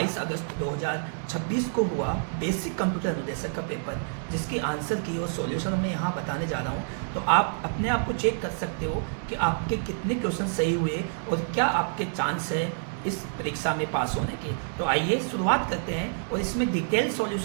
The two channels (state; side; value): silent; left; digital silence